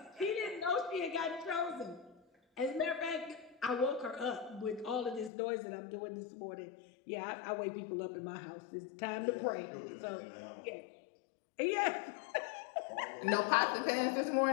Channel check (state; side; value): drops out; right; at 5.3 s